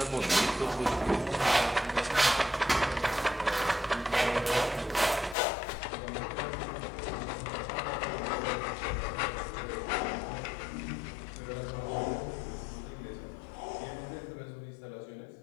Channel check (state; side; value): drops out; right; at 5.4 s